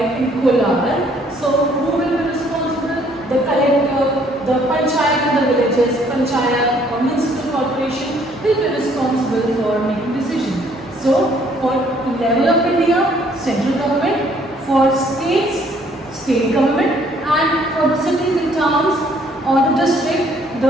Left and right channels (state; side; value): normal; both; correlation 0.63